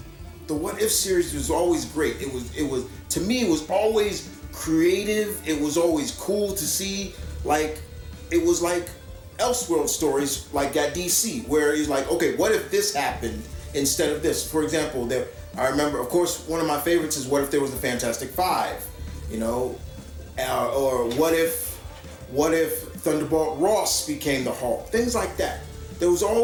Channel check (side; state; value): both; identical; correlation 1.00